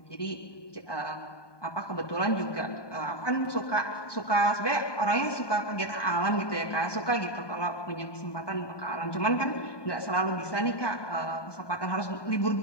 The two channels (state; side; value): late; right; 1.2 ms